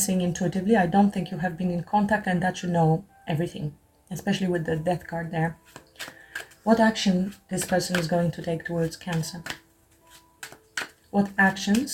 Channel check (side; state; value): both; identical; correlation 1.00